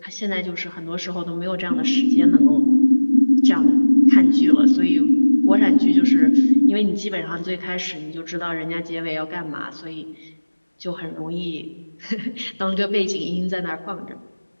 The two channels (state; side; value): inverted; both; correlation -1.00